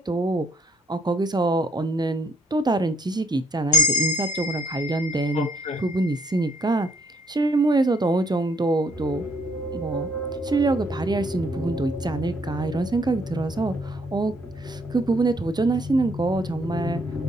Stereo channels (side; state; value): both; normal; correlation 0.67